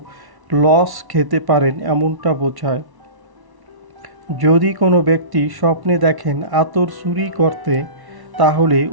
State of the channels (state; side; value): late; left; 1.1 ms